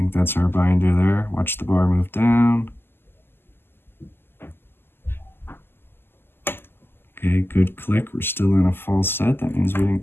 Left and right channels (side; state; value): right; late; 0.11 ms